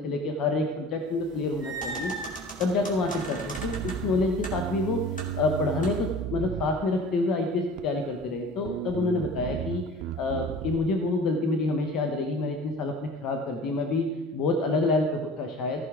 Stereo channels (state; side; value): normal; both; correlation 0.42